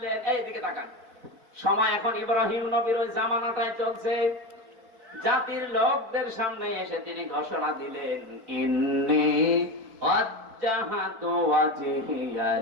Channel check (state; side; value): late; left; 4.1 ms